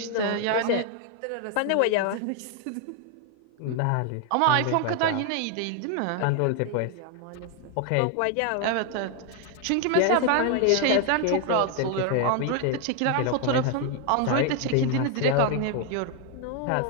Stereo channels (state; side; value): different; both; correlation 0.00